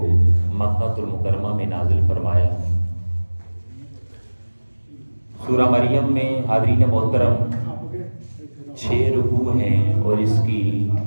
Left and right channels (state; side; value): inverted; both; correlation -1.00